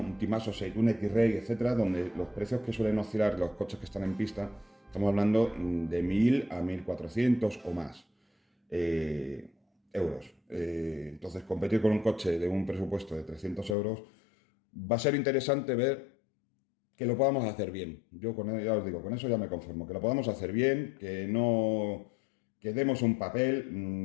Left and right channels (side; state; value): right; drops out; at 13.8 s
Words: Timaso 6, un X-Ray, etcétera, donde los precios que suelen oscilar los coches que están en pista, estamos hablando de 1.000 a 1.400 o más euros. Entonces, competir con un coche de un presupuesto de 300 euros va a ser interesante ver que lo podamos hacer bien. Yo ya os digo, con eso ya me conformo, que lo podamos hacer bien, que demos un